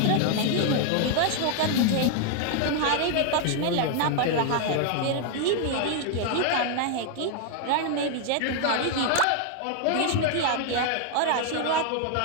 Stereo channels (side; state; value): both; different; correlation 0.00